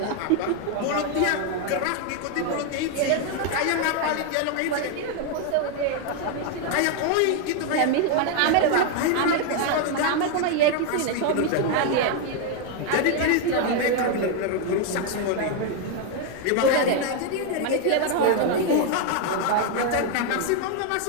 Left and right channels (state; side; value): different; both; correlation 0.01